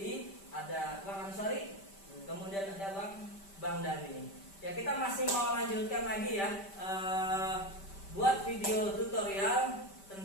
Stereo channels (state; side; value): late; right; 5.1 ms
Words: Ada Bang Ansori, kemudian ada Bang Dani. Ya, kita masih mau lanjutkan lagi ya, buat video tutorial